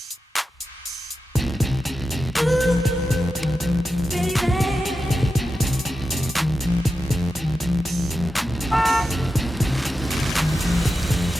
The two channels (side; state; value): both; normal; correlation 0.90